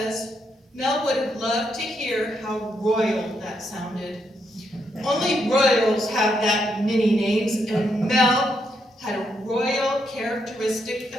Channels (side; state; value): both; normal; correlation 0.78